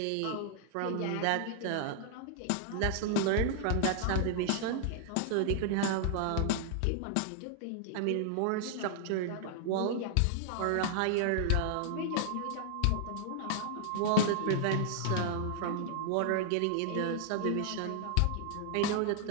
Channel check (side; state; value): both; different; correlation -0.01